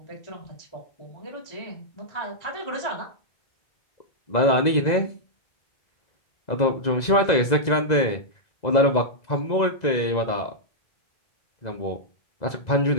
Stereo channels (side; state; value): right; late; 2.0 ms